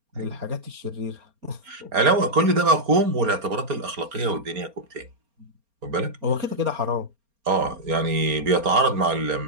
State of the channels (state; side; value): late; left; 4.3 ms